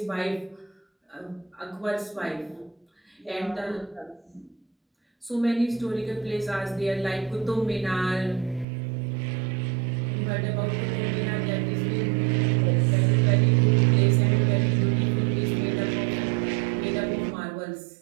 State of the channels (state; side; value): drops out; left; at 8.7 s